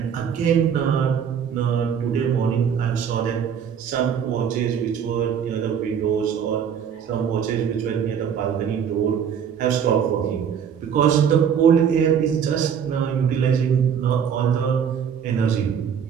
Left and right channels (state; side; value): quieter; left; 7.8 dB